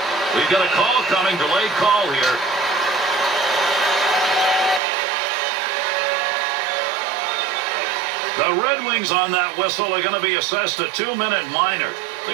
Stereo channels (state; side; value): drops out; left; at 4.8 s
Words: We've got a call coming. Delayed call here. The Red Wings on that whistle are going to be assessed a 2-minute minor.